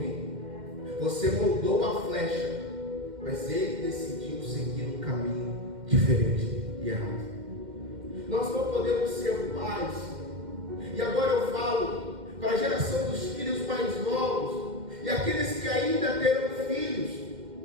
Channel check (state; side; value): late; left; 2.1 ms